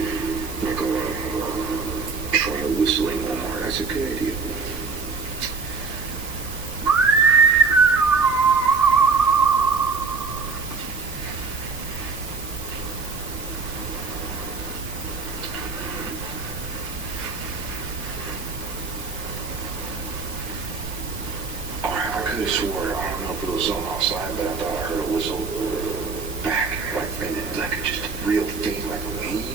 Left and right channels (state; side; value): quieter; left; 4.7 dB